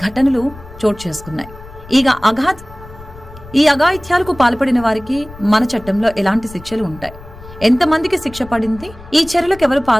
ఘటనలు చోటు చేసుకున్నాయి? ఈ అఘాయిత్యాలకు పాల్పడిన వారికి మన చట్టంలో ఎలాంటి శిక్షలు ఉంటాయి? ఎంతమందికి శిక్ష పడింది? ఈ చర్యలకు ఎవరు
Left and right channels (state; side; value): noise; left; rumble, 18 dB below the sound